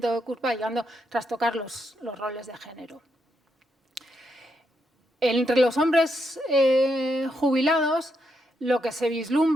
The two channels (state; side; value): normal; both; correlation 0.80